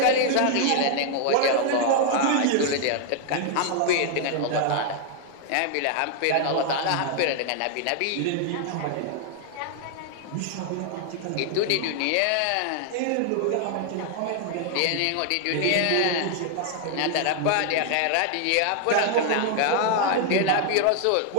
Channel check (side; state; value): both; different; correlation 0.00